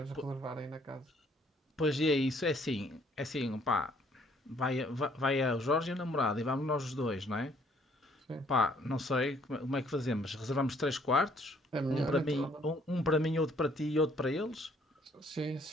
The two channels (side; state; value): both; normal; correlation 0.63